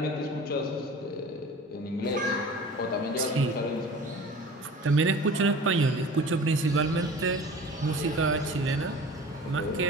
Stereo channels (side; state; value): both; normal; correlation 0.41